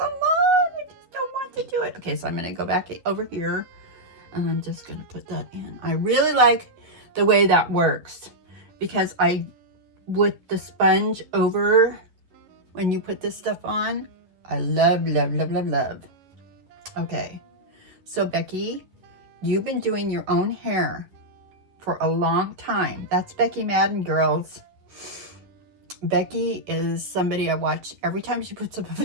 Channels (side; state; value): left; late; 10 ms